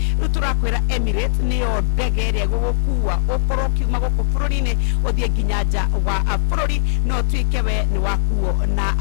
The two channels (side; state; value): right; silent; 59 dB below the other